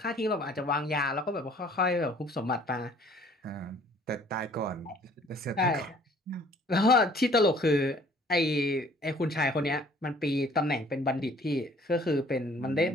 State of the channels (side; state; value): both; normal; correlation 0.56